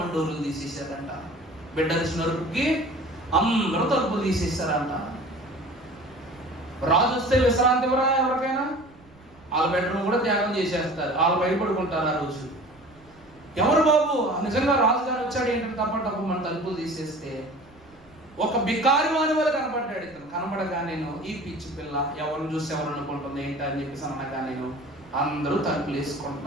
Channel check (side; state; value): right; noise; rumble, 28 dB below the sound